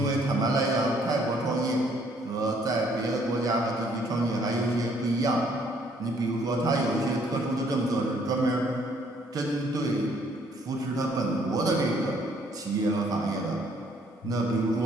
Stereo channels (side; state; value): both; normal; correlation 0.64